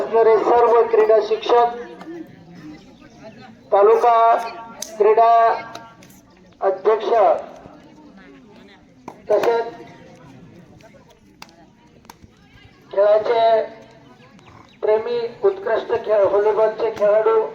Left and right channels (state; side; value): identical; both; correlation 1.00